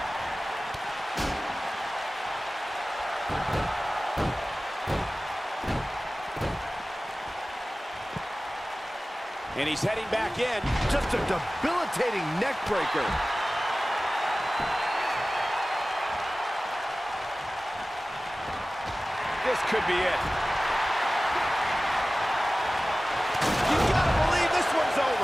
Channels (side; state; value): both; normal; correlation 0.97